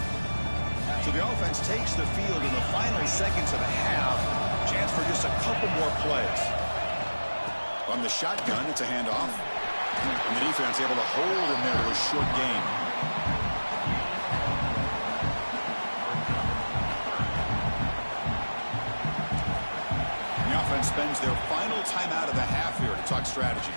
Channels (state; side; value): inverted; both; correlation -1.00